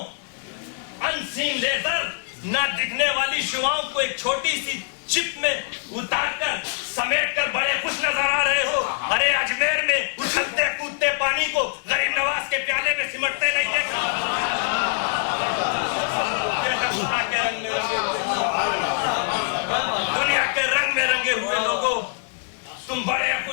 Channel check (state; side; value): silent; right; digital silence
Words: انسین لیزر, نہ دکھنے والی شعاؤں کو ایک چھوٹی سی چپ میں اتار کر سمیٹ کر بڑے خوش نظر آ رہے ہو. ارے اجمیر میں اچھلتے کودتے پانی کو غریب نواز کے پیالے میں سمٹتے نہیں دیکھا. دنیا کے رنگ میں رنگے ہوئے لوگوں, تم بڑے